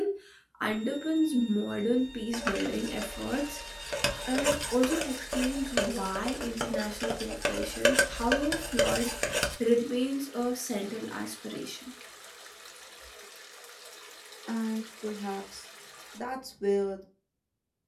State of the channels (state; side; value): identical; both; correlation 1.00